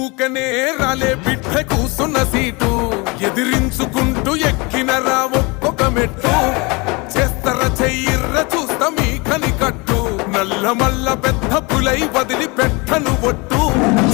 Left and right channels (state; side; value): quieter; right; 27.3 dB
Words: రాలే బిడ్డ కూసున్న సీటు ఎదిరించుకుంటూ ఎక్కినరా ఒక్కొక్క మెట్టు చేస్తర చెయ్యిర్ర చూస్తా మీ కనికట్టు నల్ల మల్ల పెద్ద పులై వదిలి పెట్టను ఒట్టు